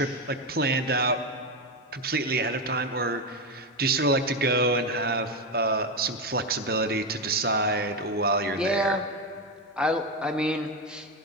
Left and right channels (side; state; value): both; normal; correlation 0.12